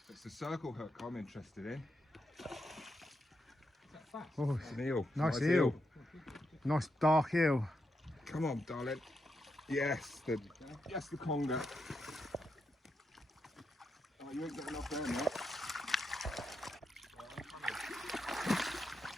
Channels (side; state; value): both; normal; correlation 0.84